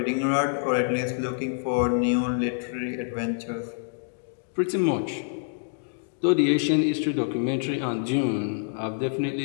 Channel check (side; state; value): right; silent; digital silence